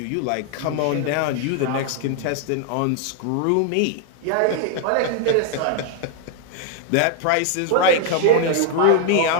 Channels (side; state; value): both; different; correlation 0.00